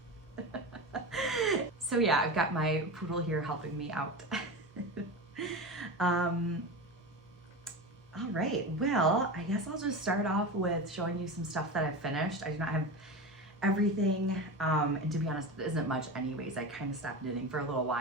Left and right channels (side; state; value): both; normal; correlation 0.25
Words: So yeah, I've got my poodle here helping me out. All right, well, I guess I'll just start off with showing you some stuff that I've finished. I do not have everything, and to be honest, it isn't much anyways. I kind of stopped knitting for a little